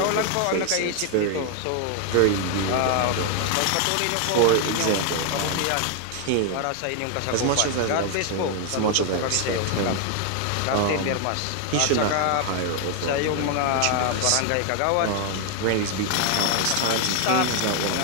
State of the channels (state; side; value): different; both; correlation 0.00